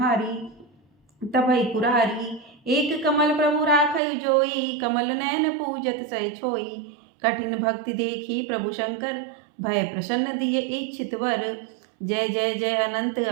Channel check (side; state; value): left; drops out; at 4.0 s